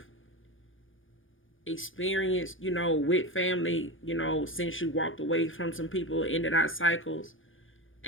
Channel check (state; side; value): late; right; 0.57 ms